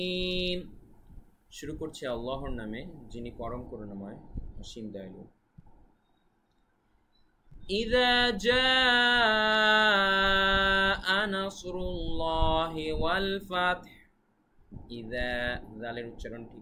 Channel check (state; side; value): identical; both; correlation 1.00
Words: শুরু করছি আল্লাহর নামে, যিনি পরম করুণাময়, অসীম দয়ালু। إذا جاء نصر الله والفتح। ইদা জালের উচ্চারণ